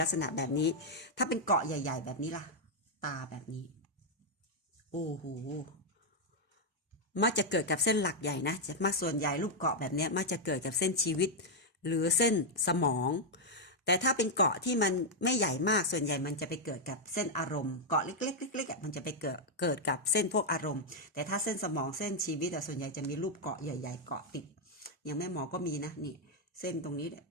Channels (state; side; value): normal; both; correlation -0.02